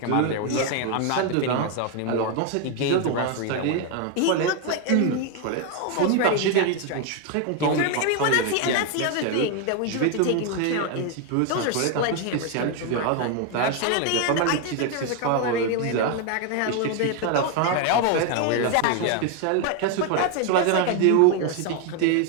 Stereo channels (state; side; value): different; both; correlation 0.01